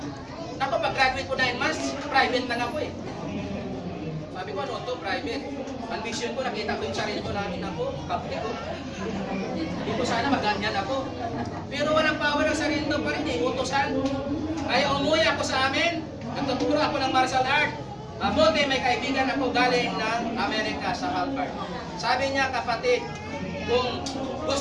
Ako, pag-graduate ko 9 months, private lang ako eh. Sabi ko, ano to, private. Ambition ko, nakita ko yung sarili ko namin ako, kapti ko. Hindi ko sana maganyan ako. Pero walang power ang sarili ko pa rin eh, utosan. Kaya umuwi ako sa amin, nagtuturo ako ng martial art. Mabuti may kaibigan ako galing ng Amerika sa Harvard. Sabi niya, kapatid, kung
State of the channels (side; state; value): both; identical; correlation 1.00